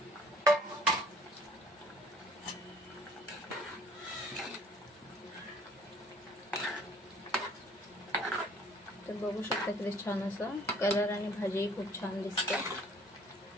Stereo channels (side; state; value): both; normal; correlation 0.56